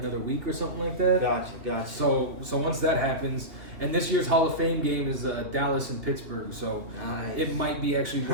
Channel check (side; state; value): left; late; 2.9 ms